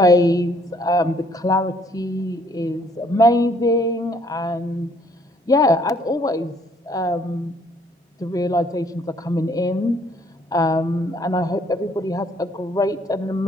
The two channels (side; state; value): both; normal; correlation 0.63